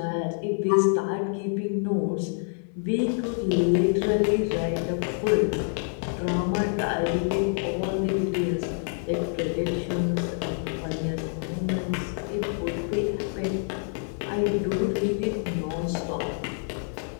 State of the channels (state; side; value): silent; right; 60 dB below the other